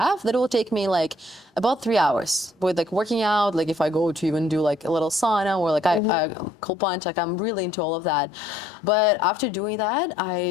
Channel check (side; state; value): right; drops out; at 6.0 s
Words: that will take me like about 3 hours with like working out. Like if I go to even do like a little sauna or like I cold plunge, like I'm really into all of that. But after doing that,